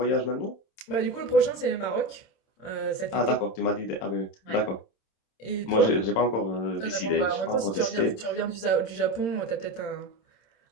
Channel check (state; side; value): late; right; 26 ms